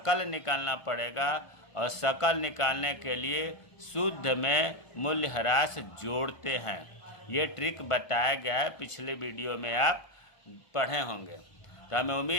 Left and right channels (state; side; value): late; right; 1.5 ms